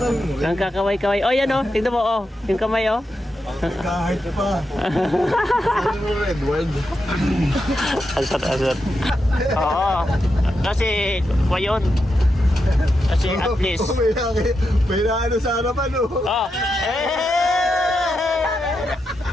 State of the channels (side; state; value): both; normal; correlation 0.86